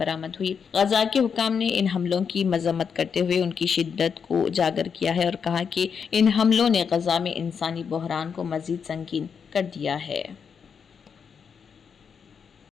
हुई। गजा के हुकाम ने इन हमलों की मजम्मत करते हुए उनकी शिद्दत को उजागर किया है और कहा कि इन हमलों ने गजा में इंसानी बहरान को मजीद संगीन कर दिया है।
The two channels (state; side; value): quieter; right; 6.6 dB